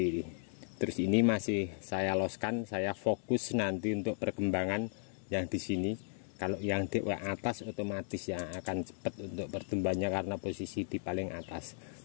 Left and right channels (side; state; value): right; silent; digital silence